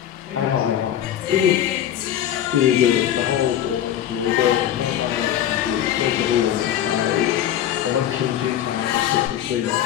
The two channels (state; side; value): quieter; right; 10.9 dB